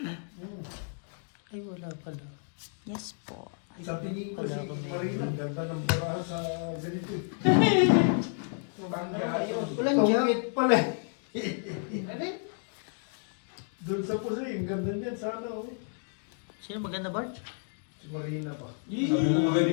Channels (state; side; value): silent; right; 57 dB below the other